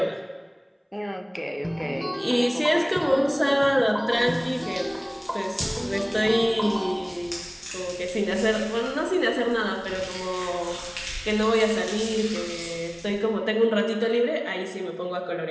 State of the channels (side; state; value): both; identical; correlation 1.00